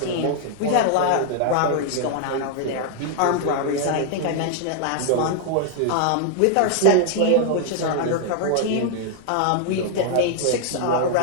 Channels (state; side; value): different; both; correlation 0.00